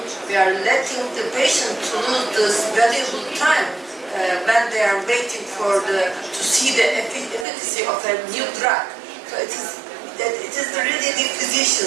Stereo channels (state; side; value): drops out; left; at 7.5 s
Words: letting the patient to lose this valuable time when they are waiting to see the efficacy of a new drug. So it is really the